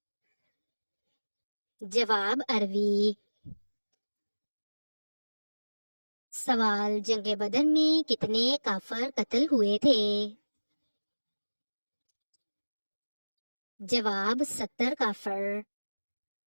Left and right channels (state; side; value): inverted; both; correlation -1.00